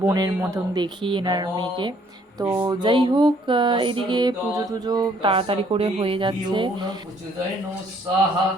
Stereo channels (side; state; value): both; normal; correlation 0.63